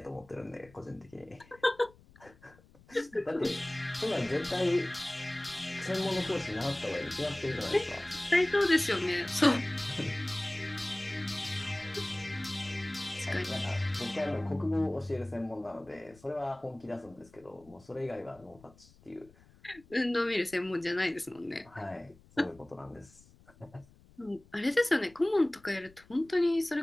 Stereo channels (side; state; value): left; noise; rumble, 26 dB below the sound